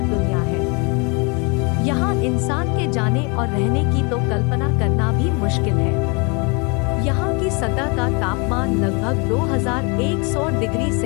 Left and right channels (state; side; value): quieter; right; 31.8 dB